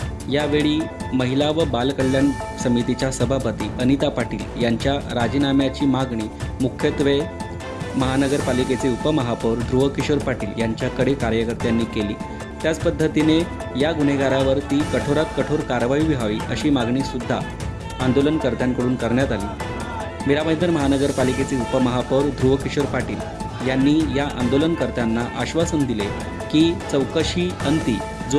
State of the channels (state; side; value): identical; both; correlation 1.00